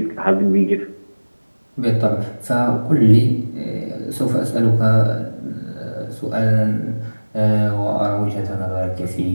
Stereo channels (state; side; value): inverted; both; correlation -1.00